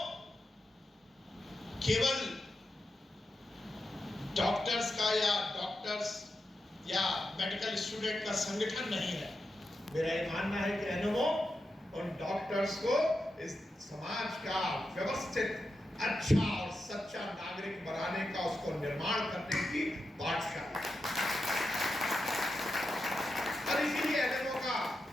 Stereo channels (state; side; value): normal; both; correlation 0.88